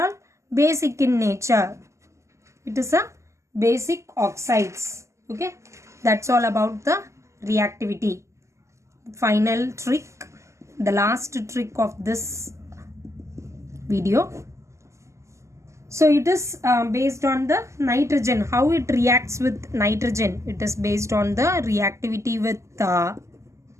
all basic in nature. It is a basic oxides. Okay, that's all about the reactivity. Final trick, the last trick of this video. So it is based on the nitrogen, how it reacts with nitrogen. It is based on the reactivity with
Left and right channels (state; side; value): late; left; 0.14 ms